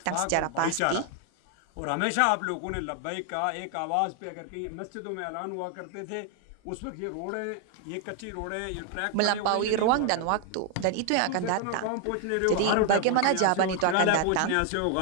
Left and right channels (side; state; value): both; different; correlation 0.00